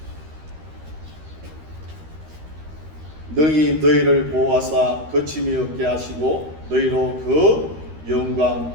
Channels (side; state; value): left; late; 13 ms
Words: 능히 너희를 보호하사 거침이 없게 하시고 너희로 그 영광